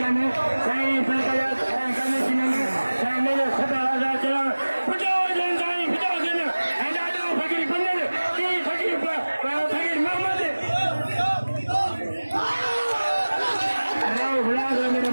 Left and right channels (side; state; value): both; inverted; correlation -1.00